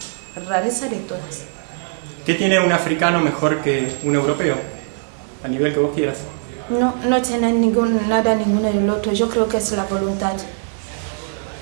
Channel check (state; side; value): silent; left; 65 dB below the other